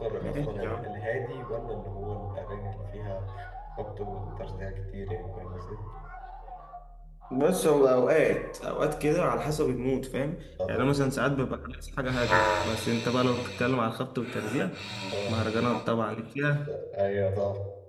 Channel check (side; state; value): both; identical; correlation 1.00